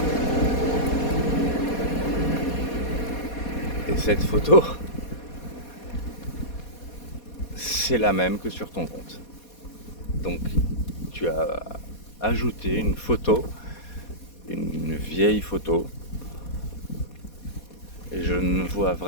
Et cette photo, c'est la même que sur ton compte. Donc tu as ajouté une photo, une vieille photo. Et je ne vois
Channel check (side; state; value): right; late; 4.2 ms